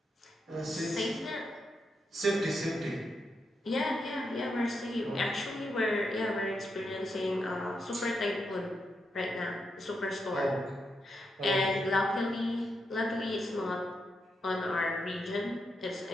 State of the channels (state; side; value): normal; both; correlation 0.83